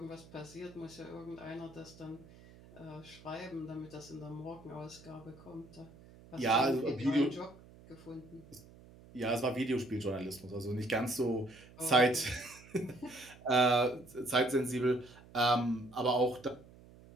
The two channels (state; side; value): noise; right; hum, 22 dB below the sound